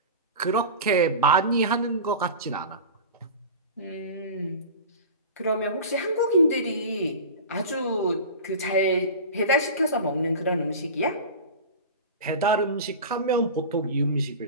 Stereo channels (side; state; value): both; inverted; correlation -0.32